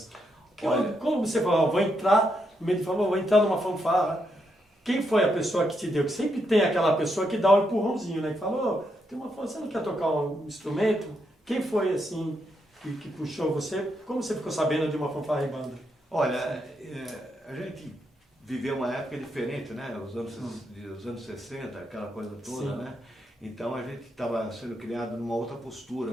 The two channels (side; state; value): both; normal; correlation 0.80